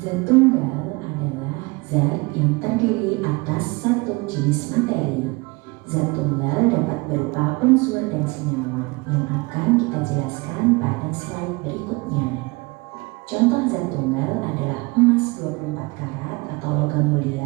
tunggal adalah zat yang terdiri atas satu jenis materi. Zat tunggal dapat berupa unsur dan senyawa yang akan kita jelaskan pada slide berikutnya. Contoh zat tunggal adalah emas 24 karat atau logam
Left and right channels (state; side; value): quieter; left; 25.8 dB